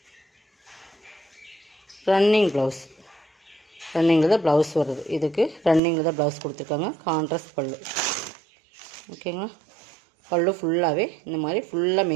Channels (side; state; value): left; drops out; at 5.8 s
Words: ரன்னிங் ப்ளவுஸ். ரன்னிங்கில் தான் ப்ளவுஸ் வருது. இதுக்கு ரன்னிங்கில் தான் ப்ளவுஸ் கொடுத்துருக்காங்க. கான்ட்ராஸ்ட் பல்லு. ஓகேங்களா, பல்லு ஃபுல்லாகவே இந்த மாதிரி ஃபுல்லாக